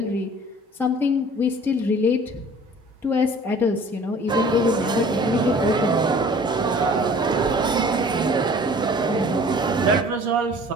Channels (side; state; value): both; normal; correlation 0.49